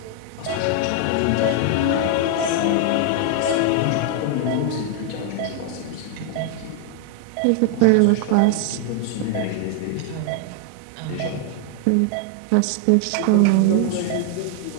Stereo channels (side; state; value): both; different; correlation 0.00